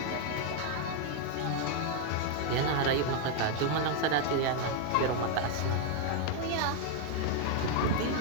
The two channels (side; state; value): both; different; correlation 0.00